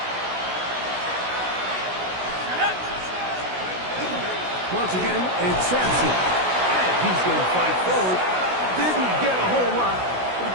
Once again, it's Sampson. And he's going to fight forward. Didn't get a whole lot, but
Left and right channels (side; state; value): left; late; 16 ms